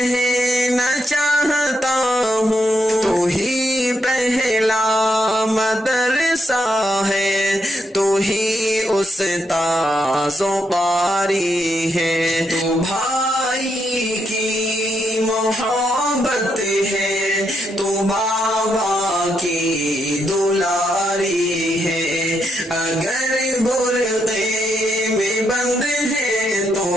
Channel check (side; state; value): both; normal; correlation 0.79